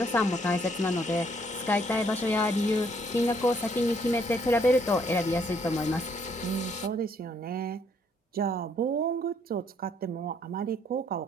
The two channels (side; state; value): both; normal; correlation 0.67